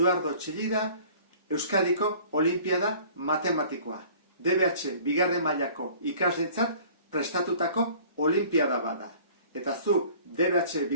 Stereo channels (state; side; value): inverted; both; correlation -0.49